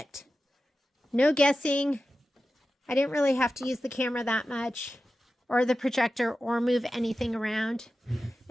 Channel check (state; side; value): normal; both; correlation 0.93